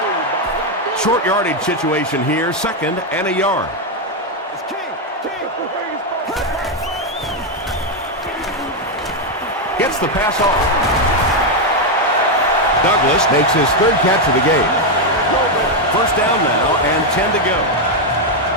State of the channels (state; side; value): normal; both; correlation 0.03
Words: Short yardage situation here, 2nd and a yard. Gets the pass off. Douglas makes his 3rd catch of the game. First down now and 10 to go.